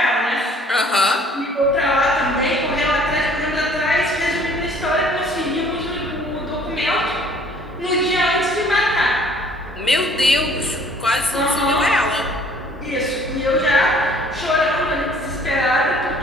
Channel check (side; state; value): both; normal; correlation 0.56